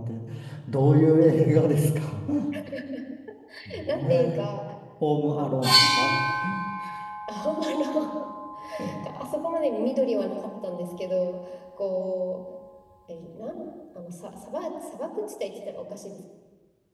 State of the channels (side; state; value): both; identical; correlation 1.00